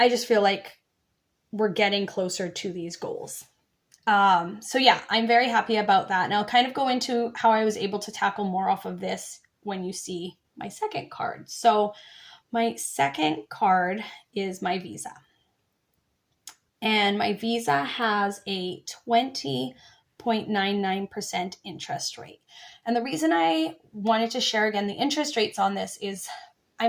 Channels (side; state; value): both; identical; correlation 1.00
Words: just feel like we're getting closer to these goals. So yeah, I'm very happy about that. And I'll kind of go into how I was able to tackle more off of this when you see my second card. So my second card is my Visa. And my Visa has a 20.99% interest rate. And the reason I wanted to share again the interest rates on this is